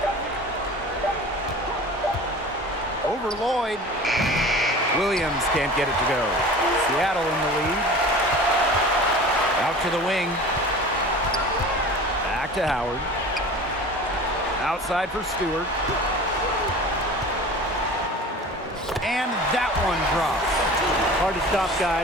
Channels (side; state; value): both; normal; correlation 0.39